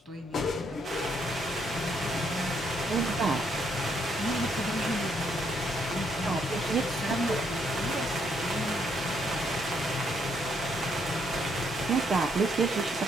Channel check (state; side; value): normal; both; correlation 0.73